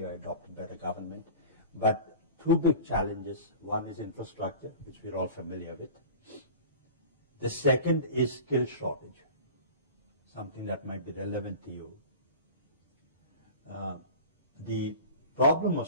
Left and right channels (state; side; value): inverted; both; correlation -0.36